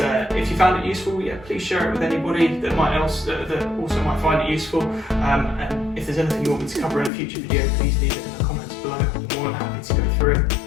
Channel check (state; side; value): drops out; right; at 7.1 s